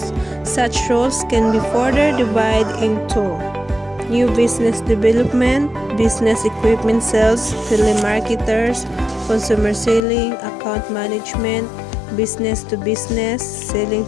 Such roles can be further divided into new business development, business equipment sales, telemarketers, consumer selling, account management, business to business, selling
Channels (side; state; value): right; drops out; at 10.0 s